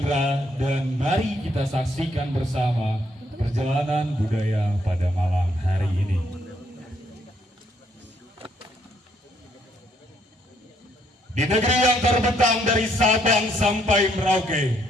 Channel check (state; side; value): normal; both; correlation 0.70